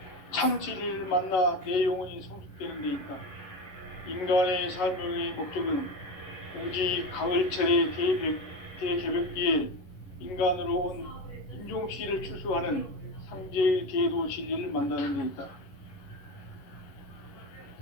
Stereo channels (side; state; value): right; late; 11 ms